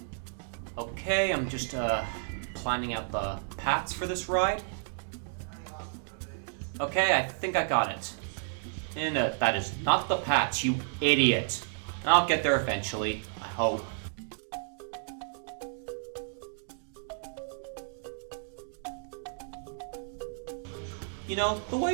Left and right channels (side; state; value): left; silent; digital silence